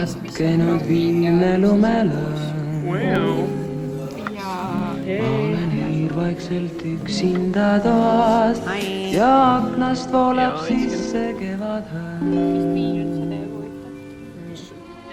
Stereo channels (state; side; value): identical; both; correlation 1.00